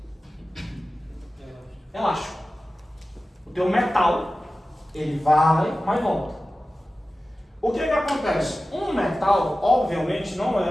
elástico. O teu metal, ele vai, mas volta. O que acontece? Um metal, obviamente, não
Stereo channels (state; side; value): normal; both; correlation 0.95